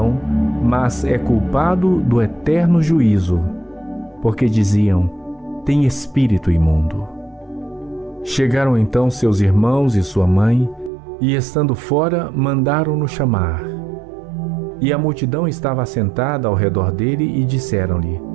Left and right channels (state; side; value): drops out; left; at 10.9 s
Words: mas é culpado do eterno juízo, porque diziam: tem espírito imundo. Chegaram então seus irmãos e sua mãe, e estando fora, mandaram-no chamar. E a multidão estava assentada ao redor dele, e disseram-lhe: